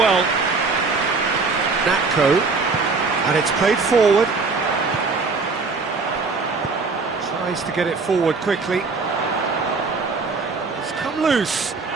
Natko, and it's played forward. Tries to get it forward quickly. It's come loose.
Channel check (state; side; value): quieter; left; 4.2 dB